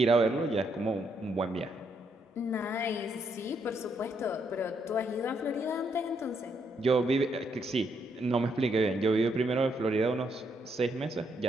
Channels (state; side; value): normal; both; correlation 0.75